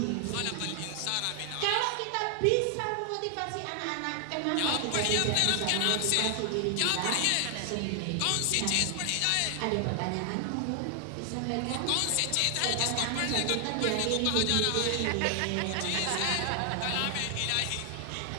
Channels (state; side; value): different; both; correlation 0.00